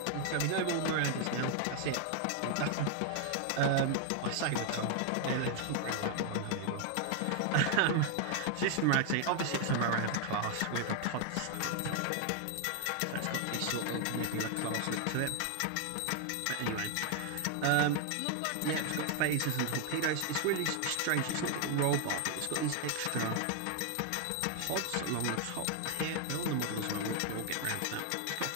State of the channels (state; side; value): different; both; correlation 0.00